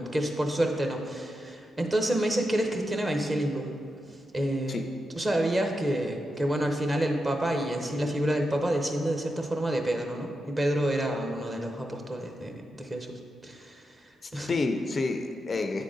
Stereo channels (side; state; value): both; normal; correlation 0.87